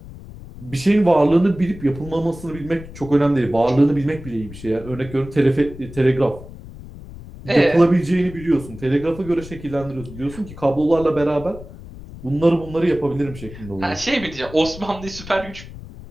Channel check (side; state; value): left; noise; rumble, 15 dB below the sound